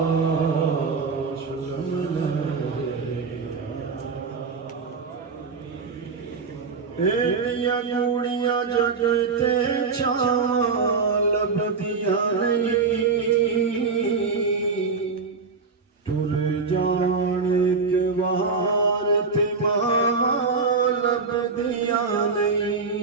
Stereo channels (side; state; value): left; quieter; 4.7 dB